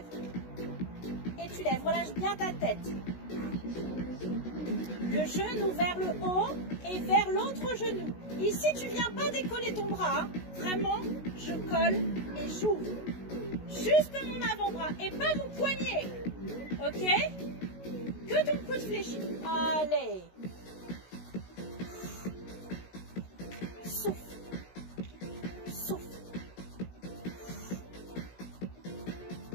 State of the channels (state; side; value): late; right; 16 ms